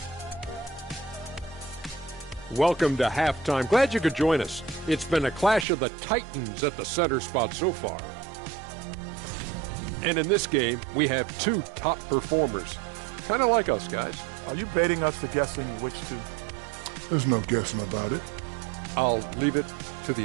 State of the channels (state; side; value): drops out; left; at 5.7 s